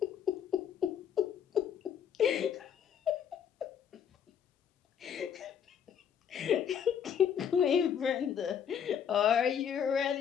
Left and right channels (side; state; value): right; quieter; 8.2 dB